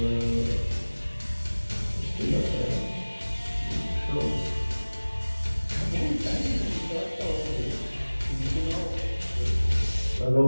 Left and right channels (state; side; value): inverted; both; correlation -1.00